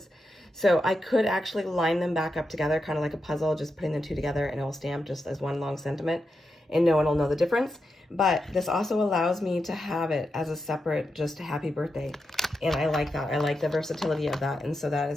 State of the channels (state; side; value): normal; both; correlation 0.87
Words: So I could actually line them back up together, kind of like a puzzle, just putting the two together, and it will stamp just as one long sentiment, and no one will know the difference. But this also allows me to have it as a separate, just a happy birthday. And I like that. I like the versatility of that. And so that